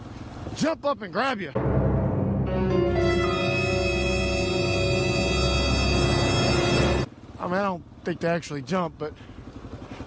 Jump up and grab you. I mean, I don't think they actually jump, but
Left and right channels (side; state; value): both; identical; correlation 1.00